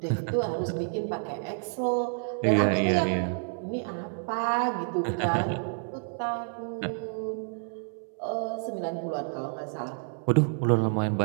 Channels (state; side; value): silent; left; 59 dB below the other